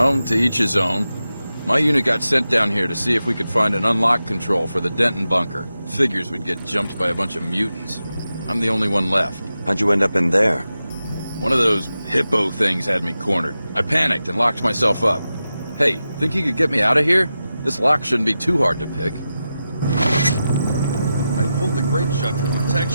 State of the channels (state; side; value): inverted; both; correlation -0.91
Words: to each his own. My unit got sent down here to see if we could find an unlock control for the Denton bunker. Figures we'd get jumped by a bunch of mutants. I'm the only one left. How'd you end up in there? One of those hippo things had me cornered. I panicked and locked myself up. Hey, think you could get me out of here? This lock shouldn't be too hard to pick. I pulled the grate shut for